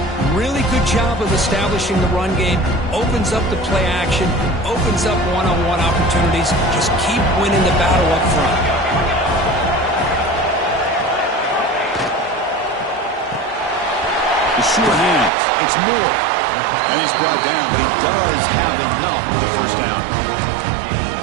really good job of establishing the run game. Opens up the play action, opens up one-on-one opportunities. Just keep winning the battle up front. The sure hands. It's Moore. And he's brought down, but he does have enough for the first down.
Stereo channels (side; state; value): left; drops out; at 15.3 s